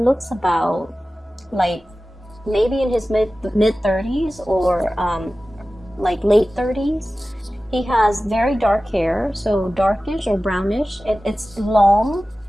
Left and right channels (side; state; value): both; normal; correlation 0.96